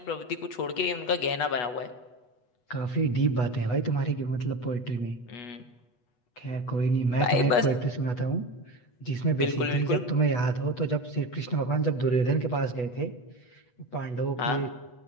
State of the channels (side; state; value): right; late; 8.2 ms